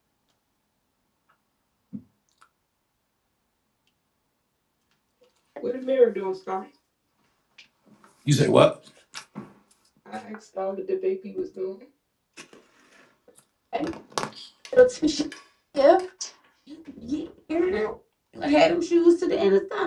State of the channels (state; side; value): identical; both; correlation 1.00